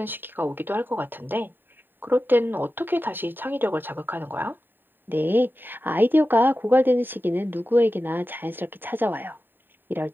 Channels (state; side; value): late; left; 0.094 ms